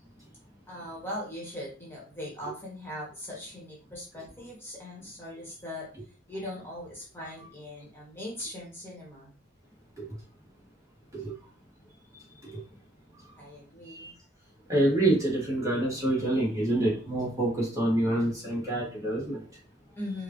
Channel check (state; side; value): normal; both; correlation 0.65